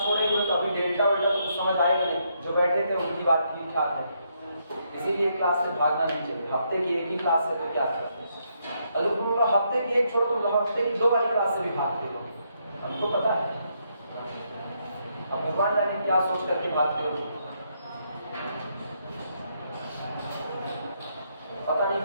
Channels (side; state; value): both; inverted; correlation -0.77